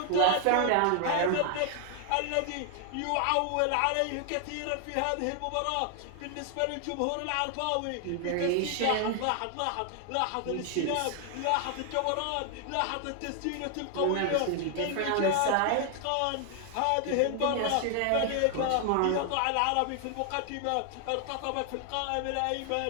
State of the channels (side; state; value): both; different; correlation 0.00